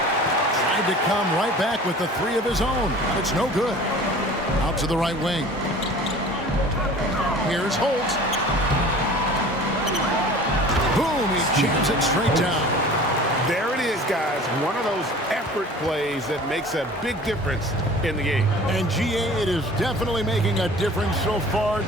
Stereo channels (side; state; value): both; normal; correlation 0.43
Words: Tried to come right back with the 3 of his own. It's no good. Out to the right wing. Here's Holt. Boom, he jams it straight down. There it is, guys. One of those effort plays that makes a big difference in the game. And GA, it is definitely making a difference so far